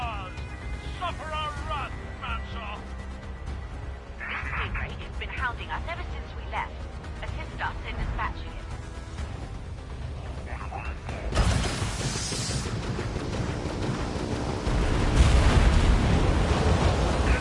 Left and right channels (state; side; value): identical; both; correlation 1.00